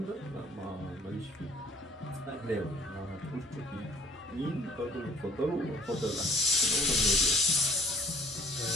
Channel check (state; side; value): normal; both; correlation 0.54